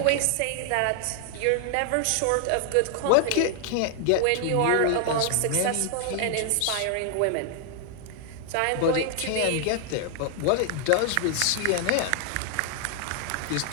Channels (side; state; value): both; different; correlation 0.00